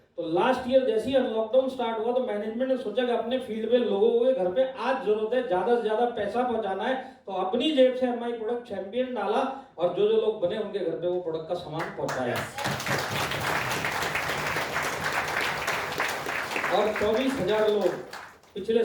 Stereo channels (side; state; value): both; identical; correlation 1.00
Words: तो लास्ट ईयर जैसे ही लॉकडाउन स्टार्ट हुआ तो मैनेजमेंट ने सोचा कि अपने फील्ड में लोगों के घर पे आज जरूरत है, ज्यादा से ज्यादा पैसा पहुंचाना है, तो अपनी जेब से एमआई प्रोडक्ट चैंपियन डाला और जो लोग बने उनके घर पे वो प्रोडक्ट का सामान पहुंचाया। और 24,000 लोग पिछले